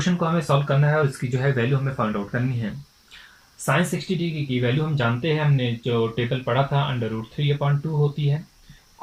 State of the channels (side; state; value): both; identical; correlation 1.00